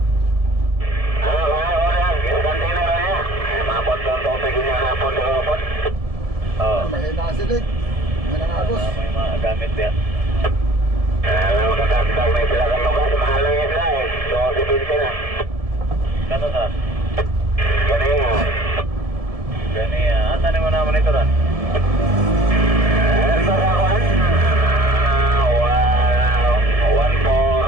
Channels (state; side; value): late; left; 1.7 ms